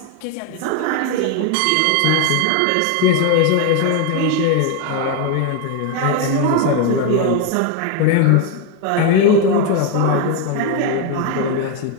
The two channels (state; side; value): different; both; correlation 0.01